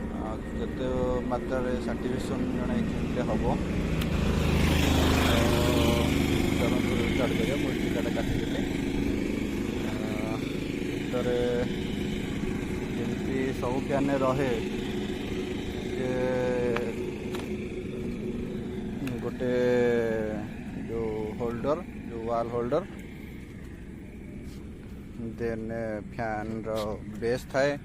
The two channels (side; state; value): both; identical; correlation 1.00